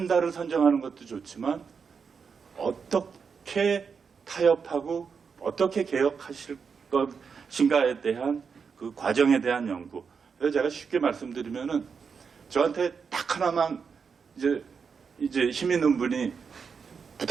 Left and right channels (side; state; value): left; quieter; 5.9 dB